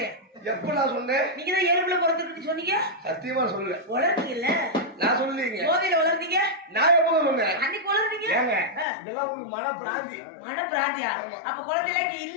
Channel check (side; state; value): right; drops out; at 8.8 s